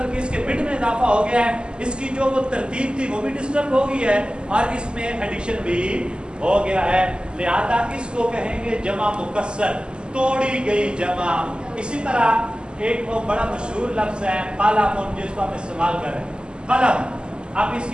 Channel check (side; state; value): left; late; 0.049 ms